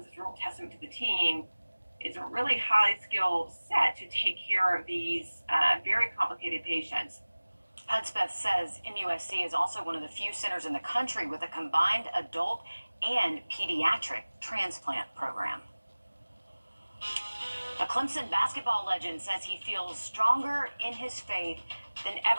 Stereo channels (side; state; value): both; inverted; correlation -1.00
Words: a real testament to the team. It's a really highly skilled set to take care of these very complicated patients. Hudspeth says MUSC is also one of the few centers in the country with a combined adult and pediatric transplant program. A Clemson basketball legend says he feels stronger in his faith than